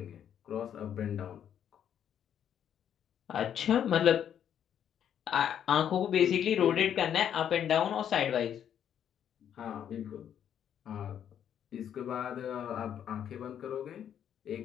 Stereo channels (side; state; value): right; quieter; 9.3 dB